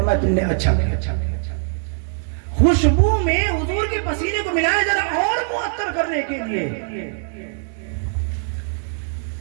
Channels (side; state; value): left; silent; digital silence